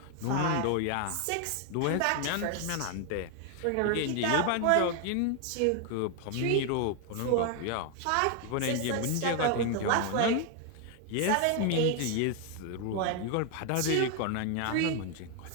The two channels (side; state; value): both; different; correlation 0.01